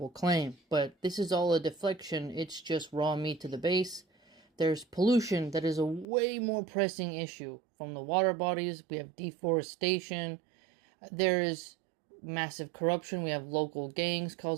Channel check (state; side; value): drops out; left; at 6.1 s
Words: claim, but this is all a deflection. It's just raw meat to the base. There's pollution that is a way more pressing issue from the water bodies. We have deforestation. There is massive corruption. We have local gangs